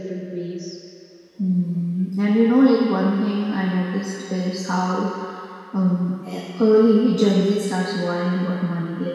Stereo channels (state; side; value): identical; both; correlation 1.00